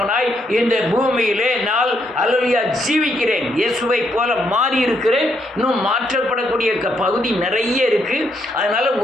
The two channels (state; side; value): normal; both; correlation 0.75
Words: இந்த பூமியிலே நான் அல்லேலூயா ஜீவிக்கிறேன். இயேசுவை போல மாறி இருக்கிறேன். இன்னும் மாற்றப்படக்கூடிய பகுதி நிறைய இருக்கு. அதனால